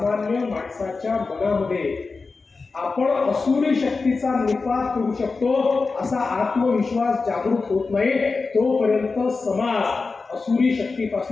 माणसाच्या मनामध्ये आपण असुरी शक्तीचा निपात करू शकतो असा आत्मविश्वास जागृत होत नाही तोपर्यंत समाज असुरी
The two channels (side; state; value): right; quieter; 4.2 dB